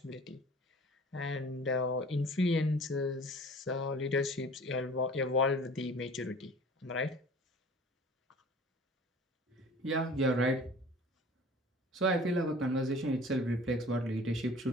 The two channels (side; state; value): both; normal; correlation 0.45